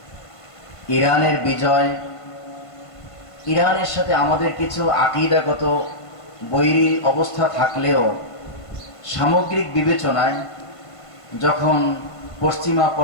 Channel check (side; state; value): right; late; 1.5 ms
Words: ইরানের বিজয়, ইরানের সাথে আমাদের কিছু আকীদাগত বৈরী অবস্থা থাকলেও সামগ্রিক বিবেচনায় যখন পশ্চিমা